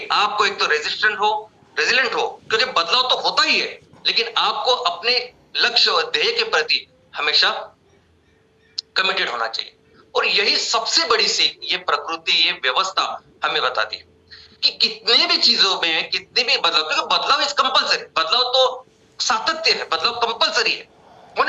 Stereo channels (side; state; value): both; identical; correlation 1.00